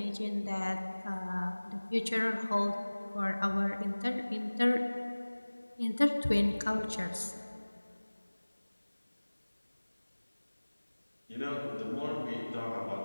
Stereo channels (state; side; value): inverted; both; correlation -1.00